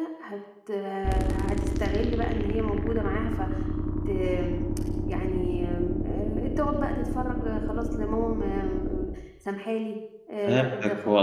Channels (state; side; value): identical; both; correlation 1.00